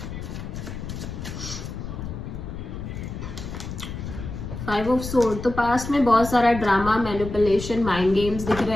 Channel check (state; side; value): noise; left; rumble, 8 dB below the sound